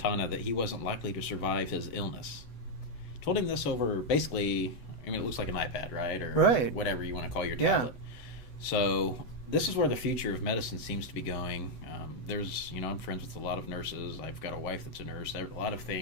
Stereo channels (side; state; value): right; late; 8.0 ms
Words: that he wasn't likely to survive his illness. Told him this over basically, I mean, it looks like an iPad, right? Or Right. whatever you want to call your Yeah. tablet. So this is where the future of medicine seems to be going. I'm friends with a lot of nurses. I've got a wife that's a nurse. A lot of